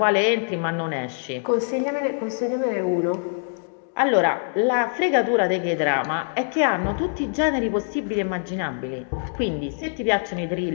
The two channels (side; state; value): right; silent; digital silence